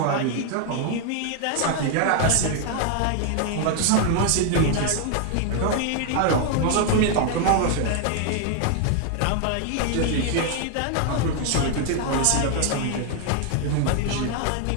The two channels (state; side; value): different; both; correlation 0.00